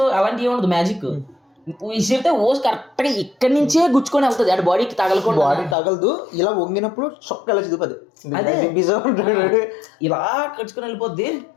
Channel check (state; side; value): drops out; right; at 5.8 s